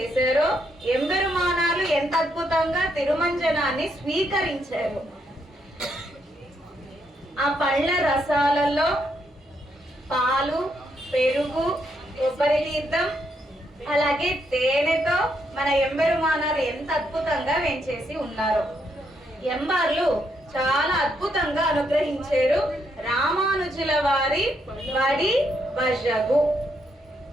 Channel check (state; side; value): normal; both; correlation 0.77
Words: ఎంబెరుమానాలు ఎంత అద్భుతంగా తిరుమంజనాన్ని స్వీకరించారు. ఆ పళ్ళ రసాలలో పాలు, పెరుగు, కొబ్బరి తీర్థం అలాగే తేనెతో మన ఎంబెరుమానాలు ఎంత అద్భుతంగా వేంచేసి ఉన్నారు. ఎంబార్లు చాలా అద్భుతంగా అనుగ్రహించారు రామానుజుల వారి వడి వజగు.